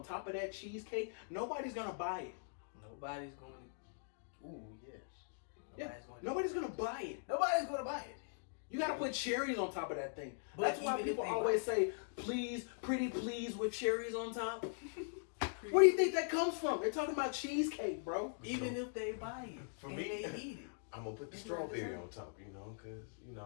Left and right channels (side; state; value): right; silent; digital silence